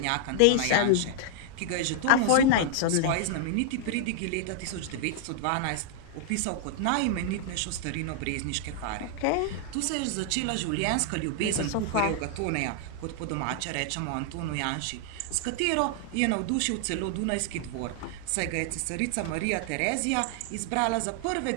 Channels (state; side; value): different; both; correlation 0.00